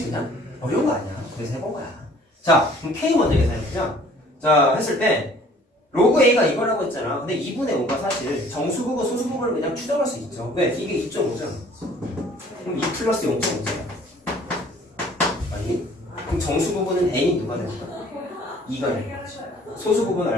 그냥? 어려운 거 아니야. 그래서 해본 거야. 자, 그럼 k 먼저 계산해보자. 자, 했을 때 로그 a가 이거라고 했잖아. 근데 2분의 5가 사실 정수 부분, 소수 부분을 그냥 추정할 수 있죠. 왜? 이게 2.5잖아. 그럼 2 플러스 0.5잖아. 아니? 그럼 정수 부분은 n이 누가 되는 거야? 2가 되는 거지. 소수 부분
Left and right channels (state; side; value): normal; both; correlation 0.54